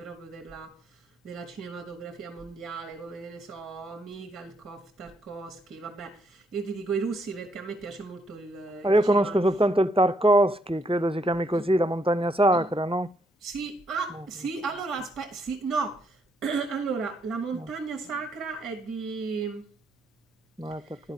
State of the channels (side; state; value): both; normal; correlation 0.73